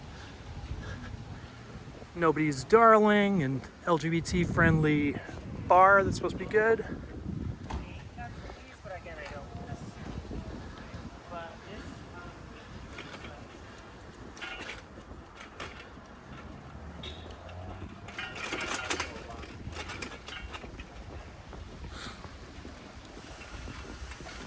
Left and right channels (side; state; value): both; identical; correlation 1.00